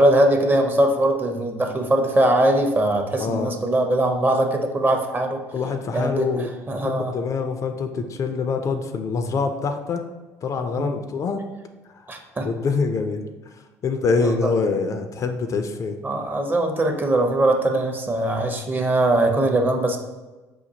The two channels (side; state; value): both; normal; correlation 0.69